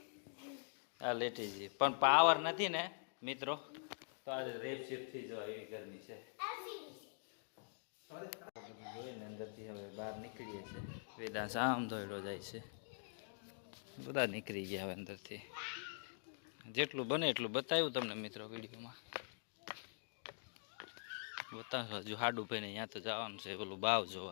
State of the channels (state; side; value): silent; right; digital silence